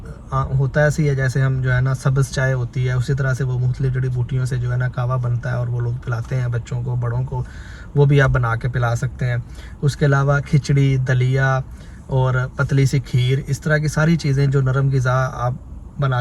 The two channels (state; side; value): identical; both; correlation 1.00